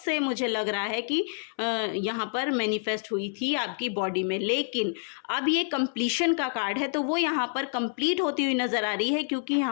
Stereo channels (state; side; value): silent; right; 59 dB below the other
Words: मुझे लग रहा है कि यहाँ पर मैनिफेस्ट हुई थी आपकी बॉडी में। लेकिन अब ये कंप्लीशन का कार्ड है, तो वो यहाँ पर कंप्लीट होती हुई नज़र आ रही है, क्योंकि